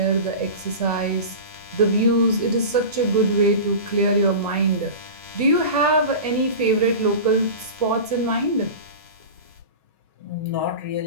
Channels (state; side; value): inverted; both; correlation -0.30